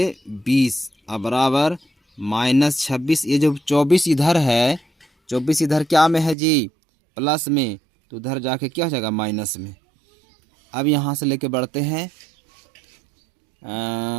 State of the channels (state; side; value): drops out; left; at 6.4 s